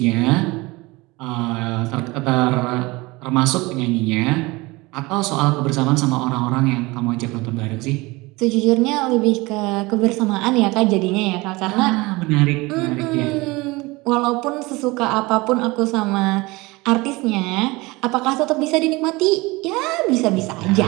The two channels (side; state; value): left; quieter; 22.9 dB